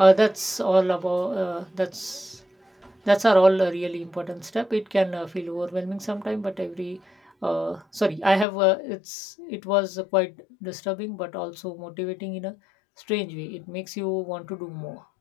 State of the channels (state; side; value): drops out; right; at 8.5 s